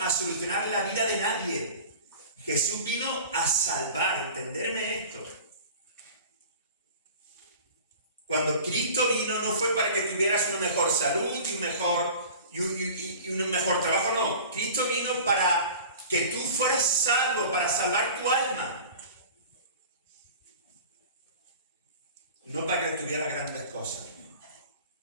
solucionar la vida de nadie. Jesús vino a salvar, entenderme esto. Cuando Cristo vino no fue para que tuvieras una mejor salud y un mejor trabajo, no. Cristo vino para que tú fueras salvo, para salvar tu alma. No para que tuvieras grandes cosas.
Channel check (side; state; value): both; inverted; correlation -0.41